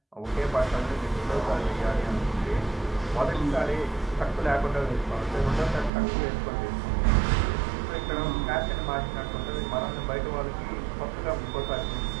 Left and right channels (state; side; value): drops out; left; at 5.9 s